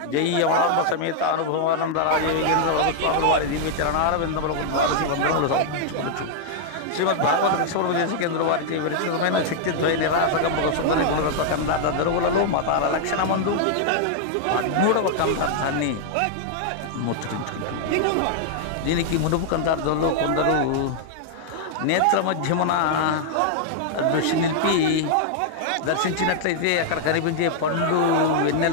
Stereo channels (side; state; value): both; different; correlation -0.01